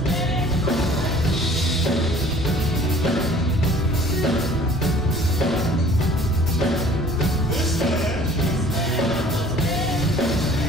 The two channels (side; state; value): both; normal; correlation 0.52